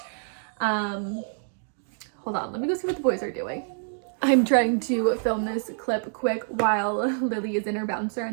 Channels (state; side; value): silent; left; digital silence